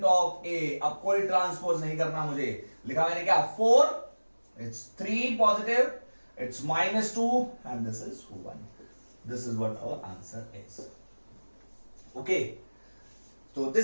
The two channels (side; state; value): both; inverted; correlation -1.00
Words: ऑफ ए। अब कोई ट्रांसपोज नहीं करना मुझे, लिखा मैंने क्या 4, it's 3 positive, it's -2 and this is 1। This is what our answer is. Okay, तो